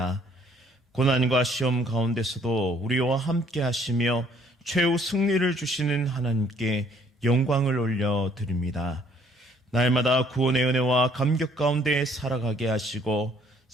고난과 시험 가운데서도 우리와 함께 하시며 최후 승리를 주시는 하나님께 영광을 올려드립니다. 날마다 구원의 은혜와 감격 가운데 살아가게 하시고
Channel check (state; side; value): normal; both; correlation 0.62